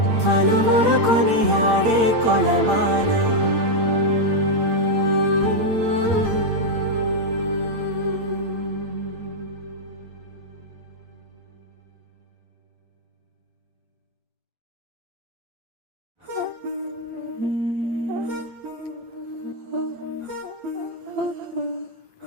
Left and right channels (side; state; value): left; late; 8.8 ms